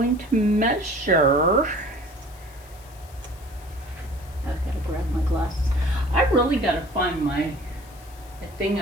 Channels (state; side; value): noise; left; hiss, 24 dB below the sound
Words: to measure. I gotta grab my glasses. I really gotta find my thing